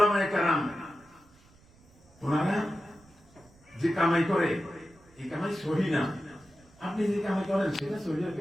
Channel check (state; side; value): noise; right; rumble, 28 dB below the sound